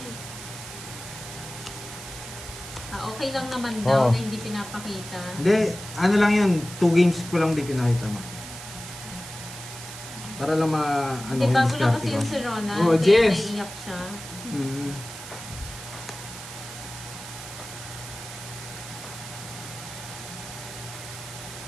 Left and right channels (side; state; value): right; noise; hiss, 12 dB below the sound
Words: Okay lang naman daw Oo. na hindi pinapakita. Hindi, ano lang yun. 2 games ko lang din pinakita mo. Para lang ano, Hindi, bago lang diskarte kasi ko. yung si Rona. Oh, kaya Jess. naiiyak siya. Mm.